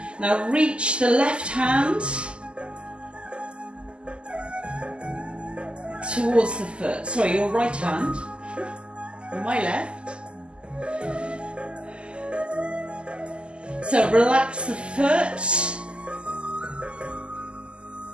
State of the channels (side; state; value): left; late; 0.051 ms